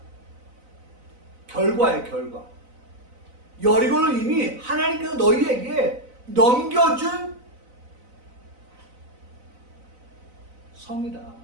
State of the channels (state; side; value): late; left; 4.0 ms